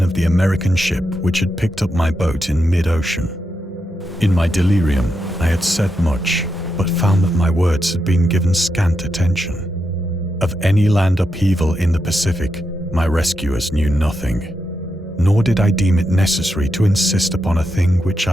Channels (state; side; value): normal; both; correlation 0.85